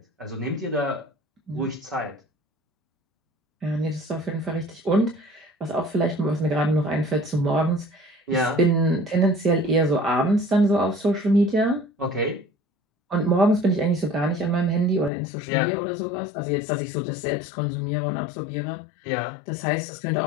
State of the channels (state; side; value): drops out; right; at 15.1 s